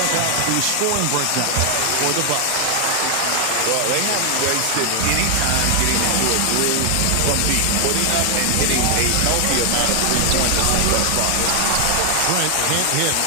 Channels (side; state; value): both; different; correlation 0.00